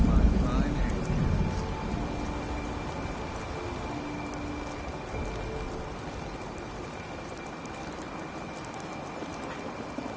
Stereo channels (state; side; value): identical; both; correlation 1.00